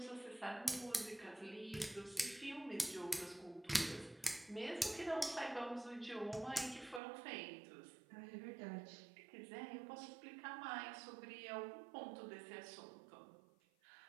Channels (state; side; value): drops out; left; at 7.0 s